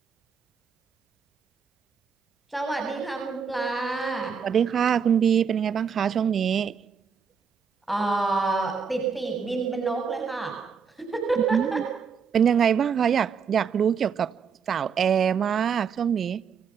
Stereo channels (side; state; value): left; quieter; 6.5 dB